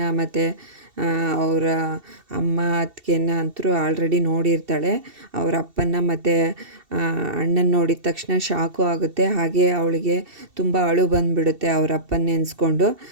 ಮತ್ತು ಅವರ ಅಮ್ಮ ಅತ್ತಿಗೆನ ಅಂತೂ ಆಲ್ರೆಡಿ ನೋಡಿರ್ತಾಳೆ. ಅವರ ಅಪ್ಪನ ಮತ್ತು ಅಣ್ಣನ ನೋಡಿದ ತಕ್ಷಣ ಶಾಕು ಆಗುತ್ತೆ. ಹಾಗೆ ಅವಳಿಗೆ ತುಂಬ ಅಳು ಬಂದುಬಿಡುತ್ತೆ. ಅವ್ರ ಅಪ್ಪನ ನೆನೆಸ್ಕೊಂಡು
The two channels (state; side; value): late; left; 2.7 ms